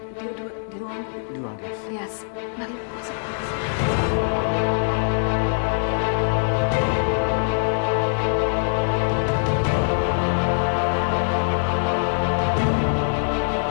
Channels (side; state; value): right; silent; digital silence